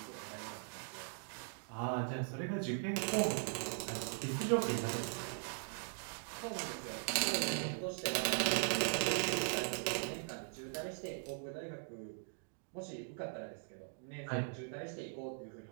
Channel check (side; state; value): left; silent; digital silence